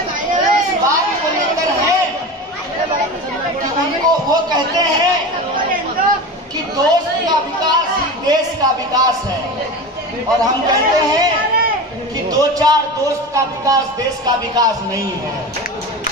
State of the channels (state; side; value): normal; both; correlation 0.28